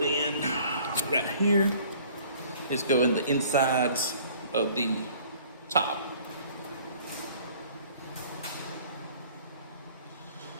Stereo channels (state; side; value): inverted; both; correlation -0.53